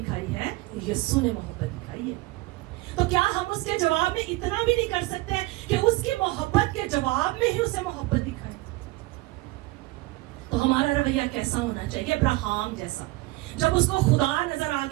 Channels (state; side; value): quieter; left; 20.5 dB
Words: ہے؟ یسوع نے محبت دکھائی ہے. تو کیا ہم اس کے جواب میں اتنا بھی نہیں کر سکتے کہ اس کی محبت کے جواب میں ہی اسے محبت دکھائیں؟ تو ہمارا رویہ کیسا ہونا چاہیے؟ ابراہم جیسا. جب اس کو خدا نظر آ